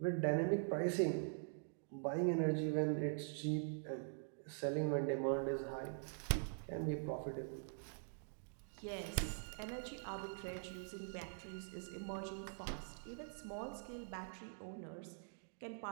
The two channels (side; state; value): left; silent; digital silence